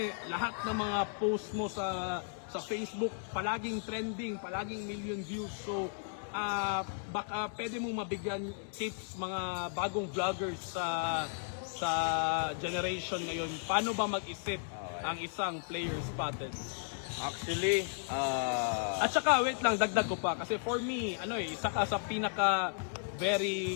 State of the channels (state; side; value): silent; right; digital silence